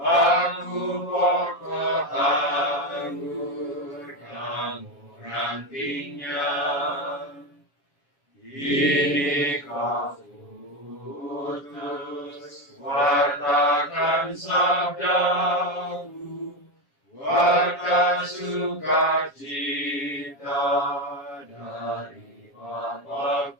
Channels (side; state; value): right; late; 7.4 ms